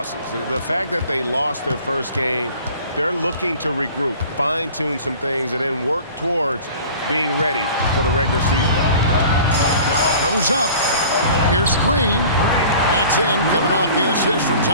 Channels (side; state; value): both; inverted; correlation -0.44